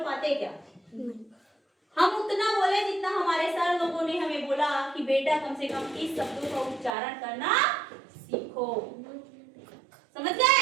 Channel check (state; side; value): drops out; left; at 6.9 s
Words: पाते क्या, हम उतना बोले जितना हमारे सर लोगों ने हमें बोला कि बेटा कम से कम इस शब्दों का उच्चारण करना सीखो, समझ